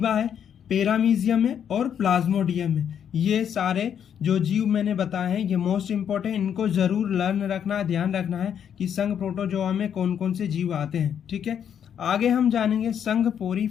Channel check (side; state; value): right; quieter; 8.6 dB